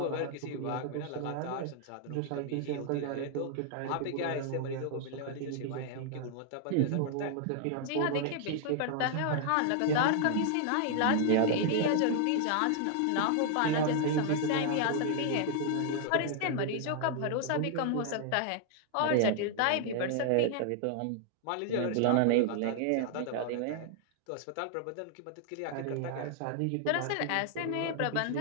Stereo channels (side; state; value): both; different; correlation 0.00